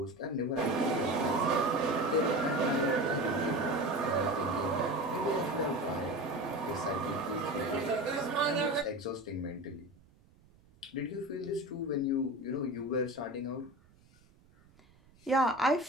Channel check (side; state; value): right; noise; rumble, 29 dB below the sound